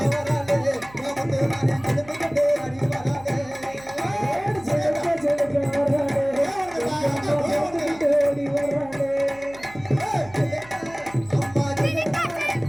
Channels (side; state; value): right; noise; hum, 22 dB below the sound